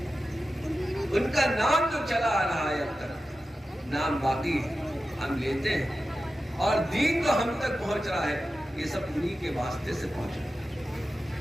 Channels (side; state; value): both; normal; correlation 0.93